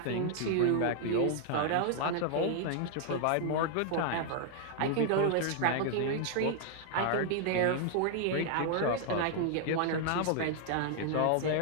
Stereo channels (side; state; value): both; different; correlation 0.00